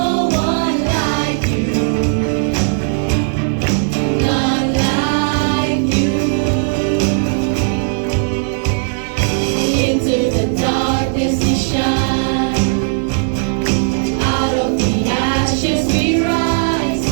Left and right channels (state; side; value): silent; left; digital silence